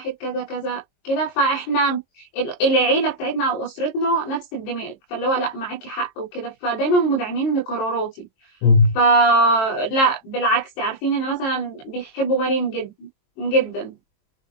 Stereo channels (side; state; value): right; late; 22 ms